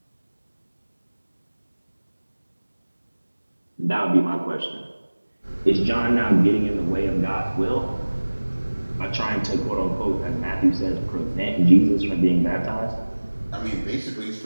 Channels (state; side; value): inverted; both; correlation -1.00